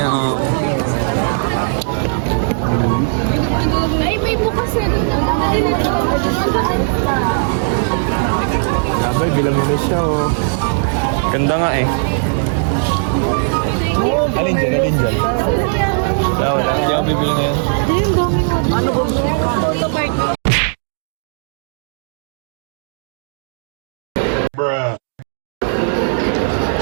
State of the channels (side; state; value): left; silent; digital silence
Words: Ay, may bukas na rin. Sabay, bilang mo na siya, oh. Ganda nga eh. Alin dyan? Wala. Hindi ako bibili ngayon. Ano ba?